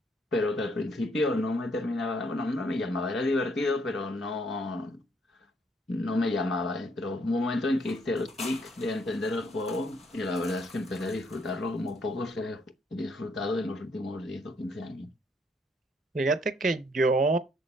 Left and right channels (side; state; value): both; normal; correlation 0.69